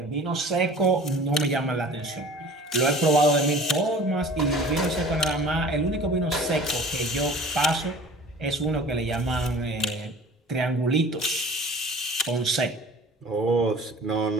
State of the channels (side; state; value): both; normal; correlation 0.44